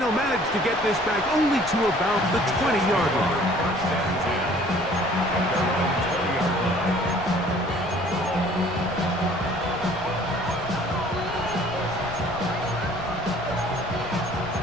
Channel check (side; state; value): left; noise; rumble, 17 dB below the sound